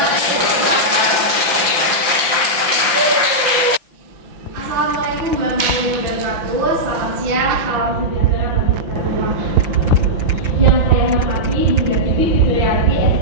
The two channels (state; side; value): late; left; 5.8 ms